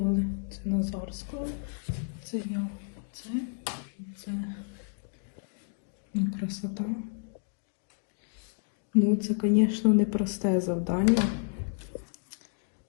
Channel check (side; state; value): right; silent; digital silence